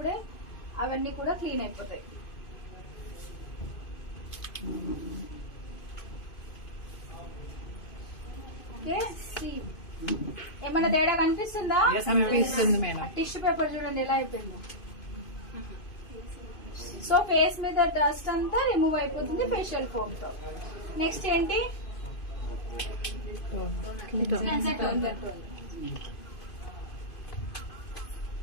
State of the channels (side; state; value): right; late; 2.5 ms